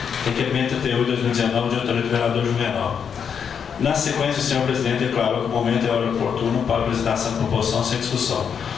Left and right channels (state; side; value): quieter; right; 7.2 dB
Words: Requerimento 38 de 2019 de autoria do vereador Juvenal. Na sequência, o senhor presidente declarou que o momento é hora oportuno para a apresentação de proposição sem discussão.